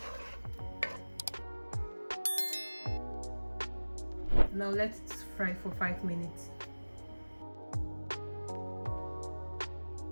Now let it fry for 5 minutes.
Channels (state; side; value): inverted; both; correlation -1.00